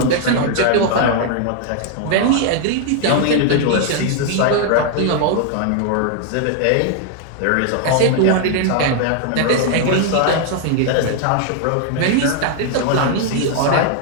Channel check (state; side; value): different; both; correlation 0.00